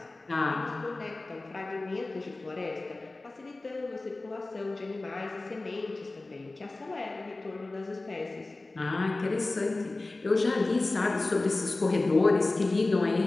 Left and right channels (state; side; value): quieter; right; 3.1 dB